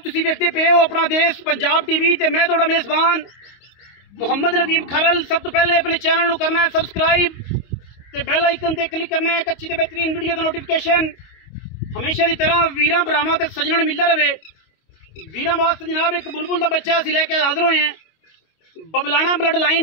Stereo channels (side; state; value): right; late; 25 ms